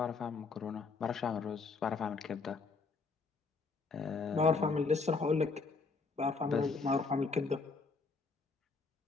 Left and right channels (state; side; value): quieter; right; 4.3 dB